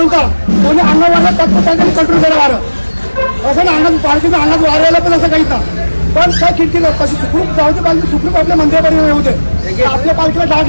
कोणी अंगावाला तत्वज्ञान कंट्रोल करा वारं असं ना, अंगात पालखीचा अंगात वारायला पण असं काहीच ना। पण त्या खिडकीला कशी सुखरूप जाऊ दे, पालखी सुखरूप आपल्या मंदिरापर्यंत येऊ दे, आपल्या पालखीला डाग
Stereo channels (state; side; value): inverted; both; correlation -1.00